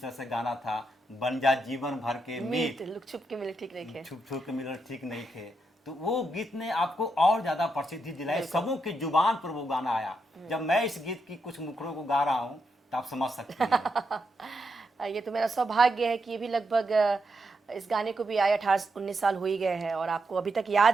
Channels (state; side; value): normal; both; correlation 0.83